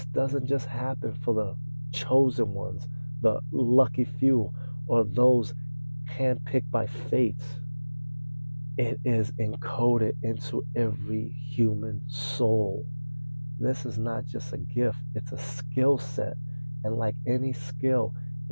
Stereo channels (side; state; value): both; inverted; correlation -1.00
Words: doesn't just happen for the chosen ones, the lucky few, or those handpicked by fate. It is encoded into every human soul. This is not just a gift, it's a skill set. And like any skill,